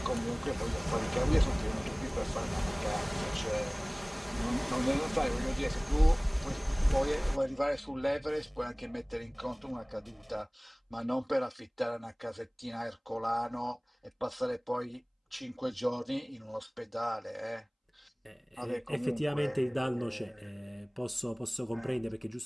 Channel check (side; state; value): both; identical; correlation 1.00